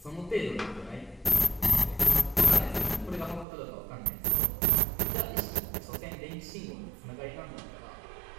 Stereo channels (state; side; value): drops out; left; at 3.5 s